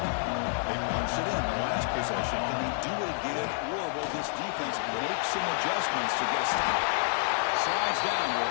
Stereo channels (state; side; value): silent; right; digital silence